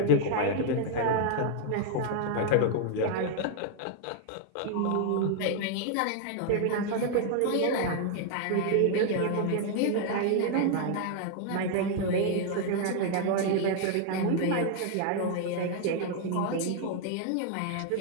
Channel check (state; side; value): different; both; correlation 0.00